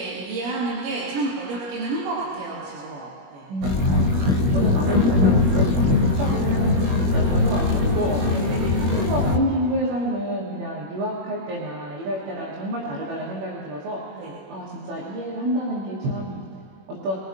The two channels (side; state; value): left; late; 21 ms